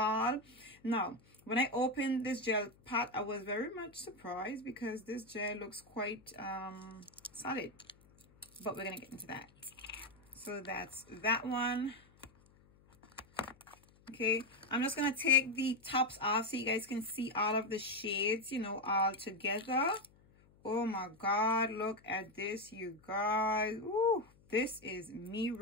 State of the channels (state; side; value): noise; left; hum, 28 dB below the sound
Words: Now, when I opened this gel pot, I was very much surprised because this gel looks quite solid, but we're gonna get into that. So that's that one. Okay, I'm just gonna take the tops off so you guys can see all of the shades, all together. Oh my god, look at this, you guys. Ooh, this is me